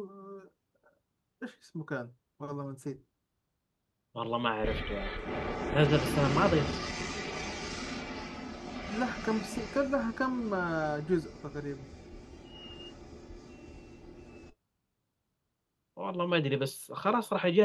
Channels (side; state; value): both; identical; correlation 1.00